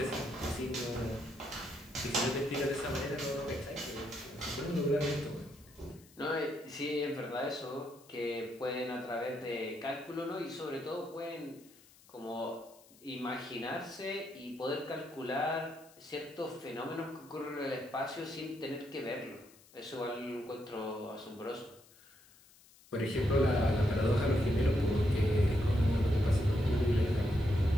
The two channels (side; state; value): left; noise; hiss, 25 dB below the sound